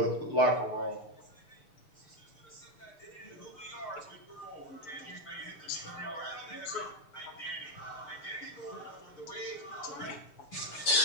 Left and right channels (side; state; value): right; late; 6.6 ms